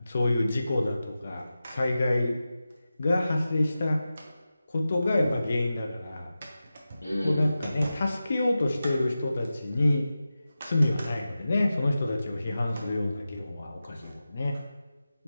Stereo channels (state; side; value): inverted; both; correlation -0.93